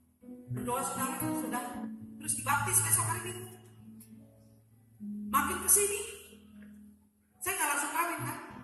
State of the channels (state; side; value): identical; both; correlation 1.00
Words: Berdoa saudara, sudah. Terus dibaptis besok hari Minggu. Makin kesini, saya nggak langsung kawin kan.